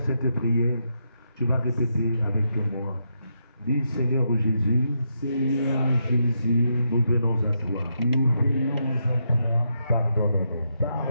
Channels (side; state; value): both; inverted; correlation -0.81